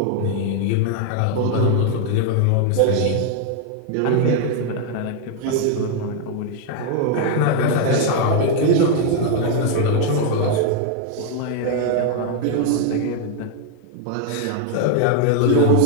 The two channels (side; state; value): both; different; correlation 0.00